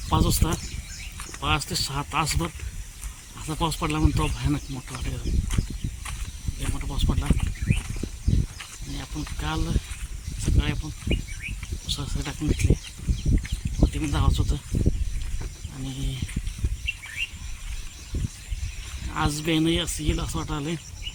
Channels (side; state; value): both; identical; correlation 1.00